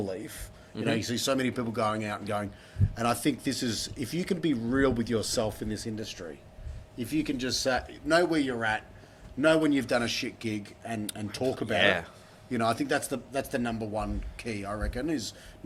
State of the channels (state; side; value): identical; both; correlation 1.00